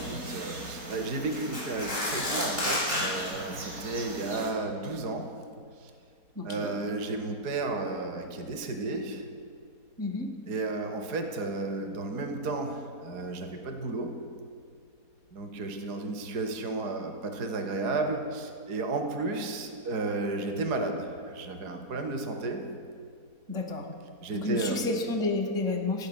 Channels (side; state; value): left; late; 4.2 ms